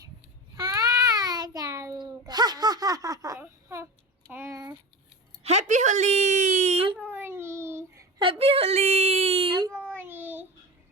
হ্যাপি হোলি হ্যাপি হোলি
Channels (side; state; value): both; normal; correlation 0.29